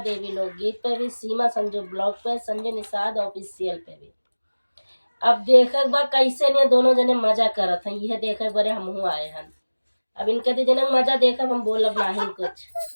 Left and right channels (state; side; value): inverted; both; correlation -1.00